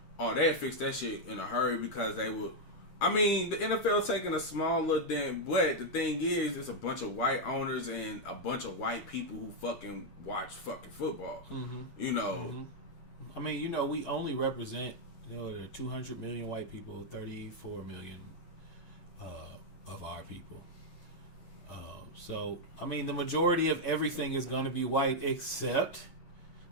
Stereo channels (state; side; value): late; right; 8.4 ms